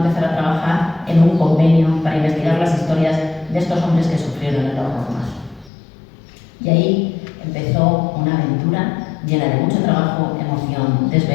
a trabajar en un convenio para investigar las historias de estos hombres que sufrieron el horror más. Y ahí empezó una aventura llena de mucho trabajo, emoción,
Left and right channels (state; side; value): drops out; right; at 5.7 s